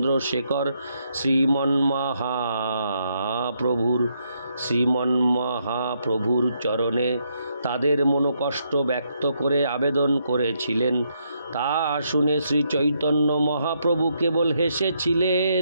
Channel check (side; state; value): both; inverted; correlation -0.76